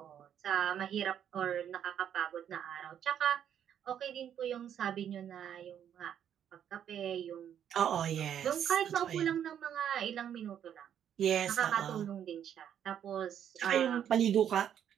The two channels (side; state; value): left; quieter; 9.4 dB